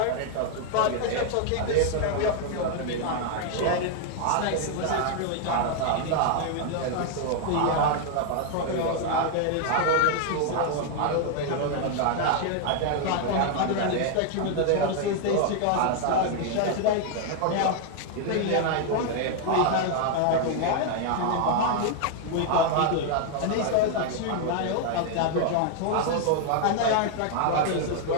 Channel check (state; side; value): different; both; correlation 0.00